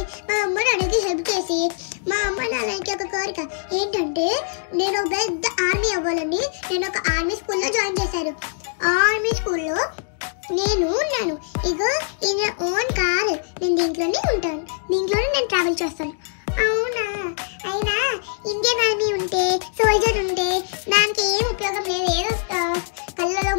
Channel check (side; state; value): right; silent; digital silence